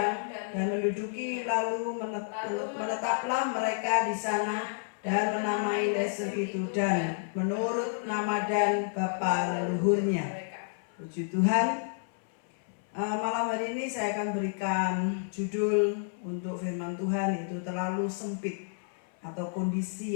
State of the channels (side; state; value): right; silent; 58 dB below the other